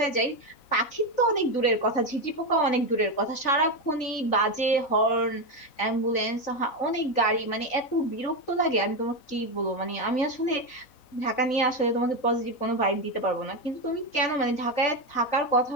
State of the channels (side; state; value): right; late; 3.9 ms